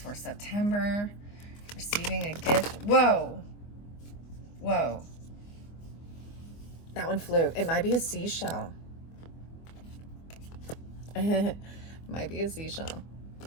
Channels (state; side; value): late; right; 24 ms